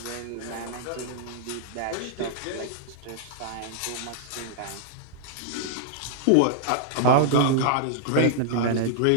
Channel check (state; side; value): different; both; correlation -0.01